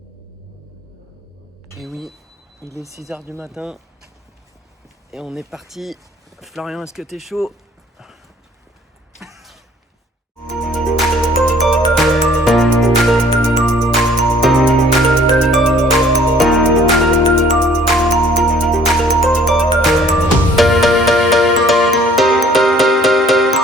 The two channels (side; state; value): both; normal; correlation 0.56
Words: Et oui, il est 6h du matin et on est parti. Florian, est-ce que t'es chaud?